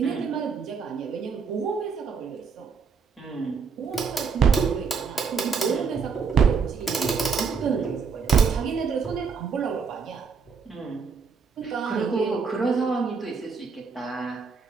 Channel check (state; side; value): quieter; left; 5.6 dB